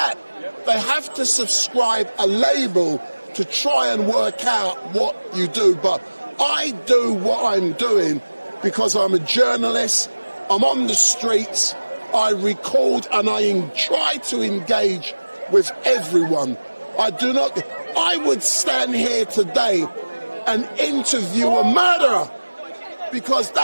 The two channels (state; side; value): inverted; both; correlation -1.00